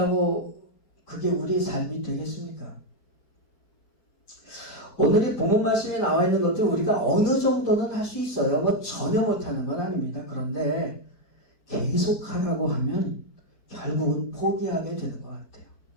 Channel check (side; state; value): right; late; 4.3 ms